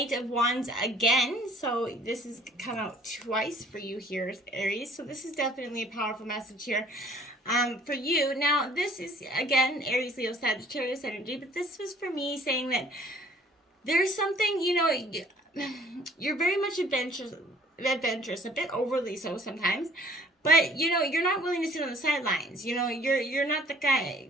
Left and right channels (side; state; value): both; normal; correlation 0.55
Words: of Wands again. So this has come out twice for you here, Aries. So this is definitely a powerful message here for you. Now, this is, again, Aries, Leo, Sagittarius energy. But this was for me saying that there's something, you're very much adventurous, a bit overly so sometimes, but you're not willing to sit on the sidelines. You're not the guy.